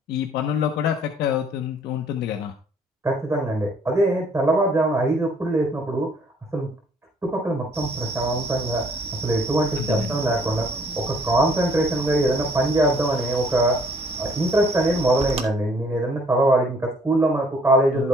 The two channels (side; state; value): both; normal; correlation 0.61